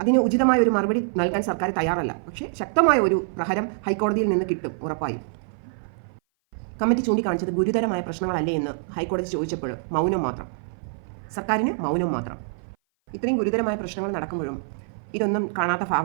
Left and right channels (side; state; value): left; silent; 57 dB below the other